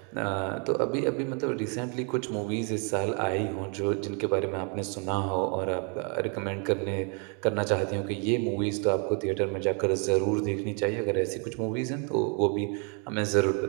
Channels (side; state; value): left; quieter; 37.4 dB